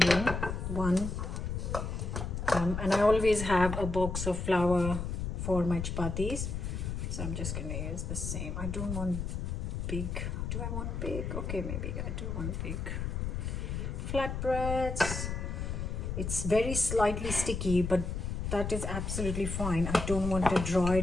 one. And I always have a box of flour for my chapatis. So I'm just gonna use the same. I don't want big. Do I want big? Okay, maybe I do want big. Flatbreads. It's very slightly sticky, but that is absolutely fine. I don't want a dry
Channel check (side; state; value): left; noise; rumble, 3 dB below the sound